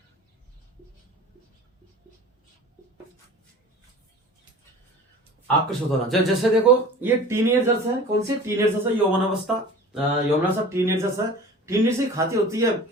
आकर्षित होना। जैसे देखो, ये टीनेजर्स है। कौन सी? टीनेजर्स है, यौवन अवस्था, यौवनावस्था, टीनेजर्स है। टीनेजर्स की खाती होती है,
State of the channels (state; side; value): normal; both; correlation 0.41